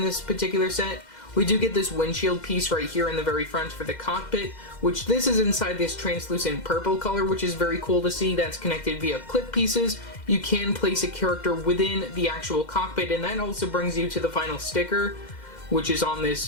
this particular set. We do get this windshield piece right here in the very front for the cockpit, which this is inside this translucent purple color, which is very cool to see. That's connected via clip pieces. You can place a character within the actual cockpit, and that also brings you to the final sticker, which is on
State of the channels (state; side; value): late; right; 2.1 ms